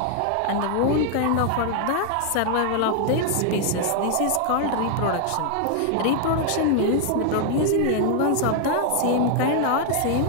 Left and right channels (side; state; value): both; different; correlation 0.00